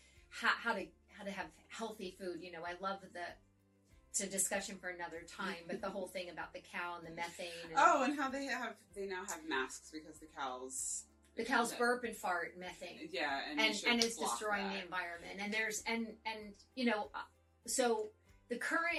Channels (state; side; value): identical; both; correlation 1.00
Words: how to have healthy food. I love it's a discussion for another time, but the whole thing about the cow and the methane. And and how they now have masks because the cows burp and fart methane. Yeah, and it's destroying the environment. And there's so the